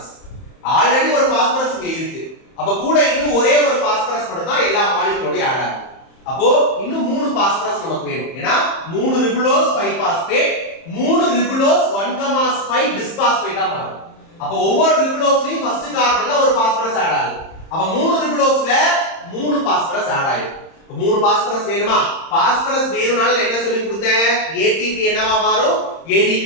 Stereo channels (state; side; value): late; right; 30 ms